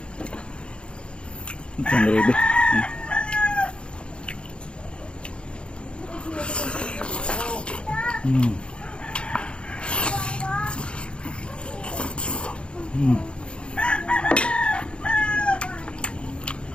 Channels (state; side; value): late; right; 0.056 ms